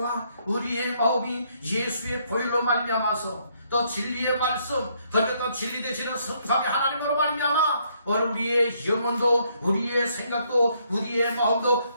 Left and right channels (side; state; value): both; inverted; correlation -0.70